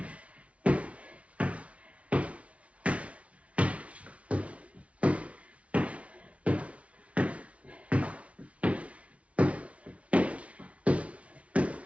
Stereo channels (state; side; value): late; left; 0.064 ms